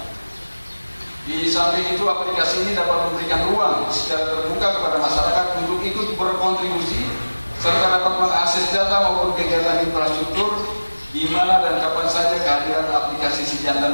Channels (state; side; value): inverted; both; correlation -1.00